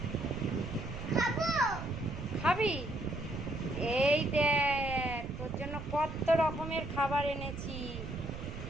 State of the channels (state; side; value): noise; right; rumble, 10 dB below the sound